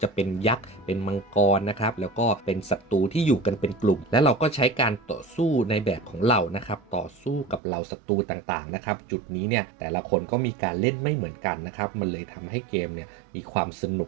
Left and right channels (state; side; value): drops out; left; at 7.6 s